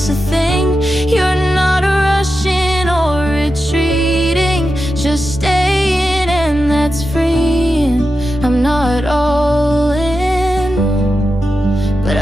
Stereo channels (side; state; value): both; normal; correlation 0.90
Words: a thing. You're not rushing or retreating, just staying, and that's freeing. I'm not all in, but